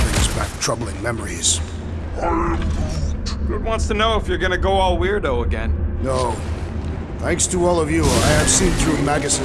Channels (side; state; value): both; identical; correlation 1.00